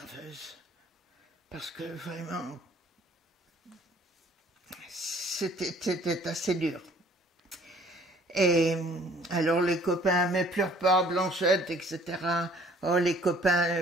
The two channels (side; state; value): both; normal; correlation 0.56